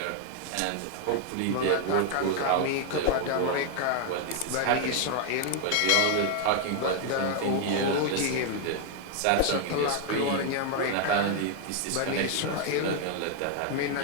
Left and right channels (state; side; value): different; both; correlation 0.00